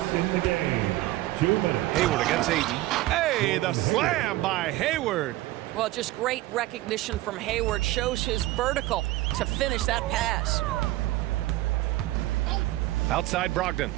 in the game. 2 minutes. Hayward against Ayton. Hey, the slam by Hayward. Well, just great recognition from Hayward. Shows his vertical to finish that pass. Outside Brogdon.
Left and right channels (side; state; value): left; quieter; 17.3 dB